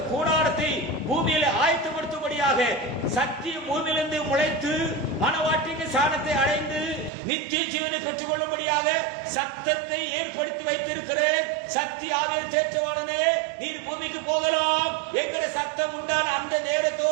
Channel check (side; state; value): left; drops out; at 7.1 s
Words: கூடாரத்தை பூமியில ஆயத்தப்படுத்தும்படியாக சத்திய பூமியிலிருந்து முளைத்து மனவாட்டிக்கு சாணத்தை அடைந்து நித்திய ஜீவனை பெற்றுக் கொள்ளும்படியாக சத்தத்தை ஏற்படுத்தி வைத்திருக்கிறேன். சத்திய ஆவிய தேற்றவாளனே, நீர் பூமிக்கு போகலாம் என்கிற சத்தம் உண்டான அந்த